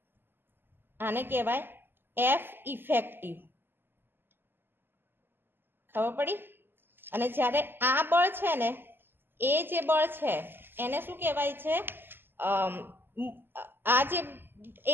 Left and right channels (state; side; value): late; left; 0.10 ms